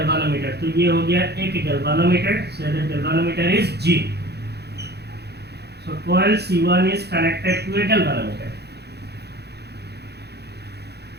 तो ये हो गया एक galvanometer. So the galvanometer is G. So coil C1 is connected to a galvanometer.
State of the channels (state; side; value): late; left; 0.48 ms